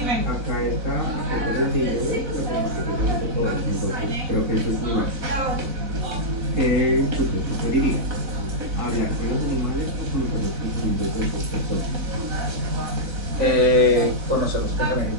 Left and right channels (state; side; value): late; left; 4.1 ms